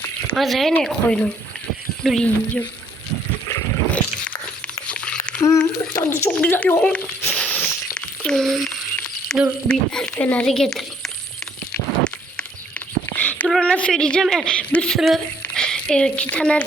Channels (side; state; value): both; normal; correlation 0.64